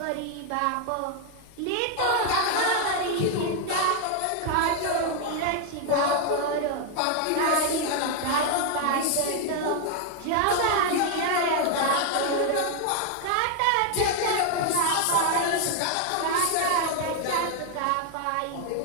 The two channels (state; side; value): different; both; correlation 0.00